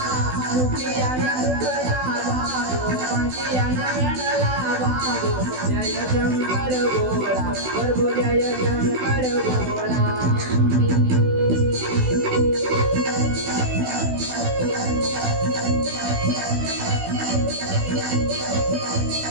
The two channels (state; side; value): late; left; 16 ms